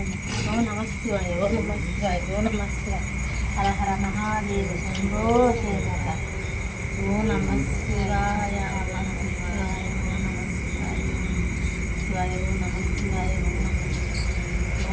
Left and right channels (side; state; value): both; identical; correlation 1.00